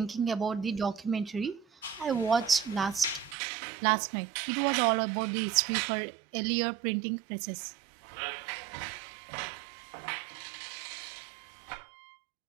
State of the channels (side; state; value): left; drops out; at 3.4 s